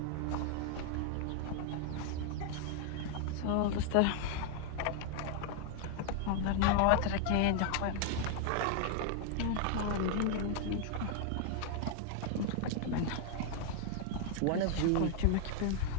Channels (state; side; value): different; both; correlation 0.00